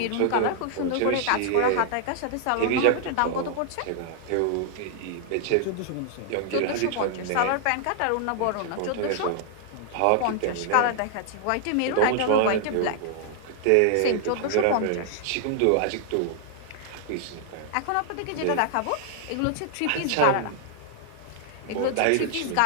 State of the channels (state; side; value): different; both; correlation 0.00